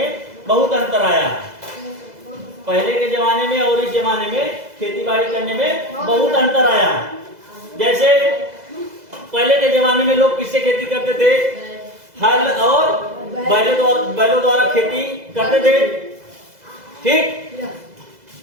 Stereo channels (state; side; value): late; left; 2.0 ms